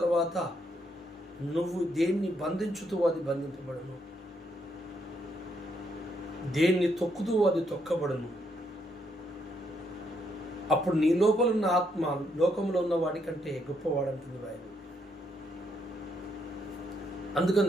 నువ్వు దేన్ని బంధించుతూ అది బంధింపబడును, దేన్ని తొక్కుతూ అది తొక్కబడును. అప్పుడు నీ లోపల ఉన్న ఆత్మ లోకంలో ఉన్న వాడి కంటే గొప్పవాడంటుంది బైబిల్.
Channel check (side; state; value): both; normal; correlation 0.75